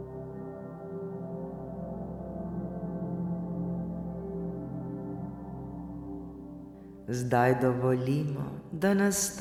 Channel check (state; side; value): identical; both; correlation 1.00